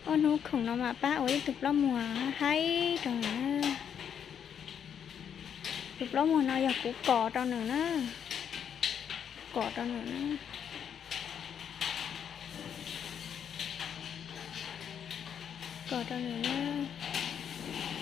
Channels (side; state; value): right; quieter; 8.3 dB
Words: ôi nó khủng nó mà ba ơi tục lắm một hay rồi nữa tục lắm một nó giờ cũng cỏ trong nữa cỏ trong nữa cỏ trong nữa